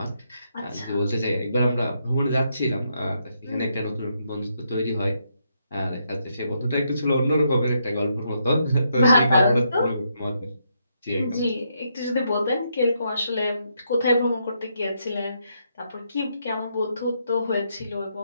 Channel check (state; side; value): inverted; both; correlation -0.78